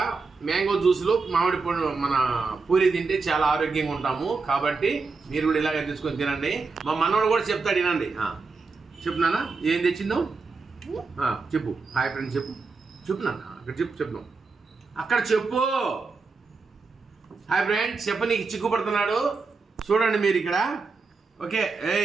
మ్యాంగో జ్యూస్లో మామిడి పండు మన పూరి తింటే చాలా ఆరోగ్యంగా ఉంటాము. కాబట్టి మీరు కూడా ఇలాగే తెచ్చుకొని తినండి. మా మనవాడు కూడా చెప్తాడు, వినండి. చెప్తున్నానా ఏం తెచ్చిందో? చెప్పు. హాయ్ ఫ్రెండ్స్ చెప్పు. చెప్తున్నాను అక్కడ చెప్తున్నాం అక్కడ చెప్పు. హాయ్ ఫ్రెండ్స్ చెప్ప, నీకు చిక్కుపడుతున్నాడు చూడండి మీరు ఇక్కడ. ఓకే,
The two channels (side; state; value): left; quieter; 4.3 dB